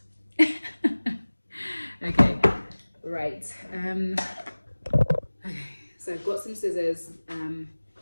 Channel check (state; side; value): inverted; both; correlation -1.00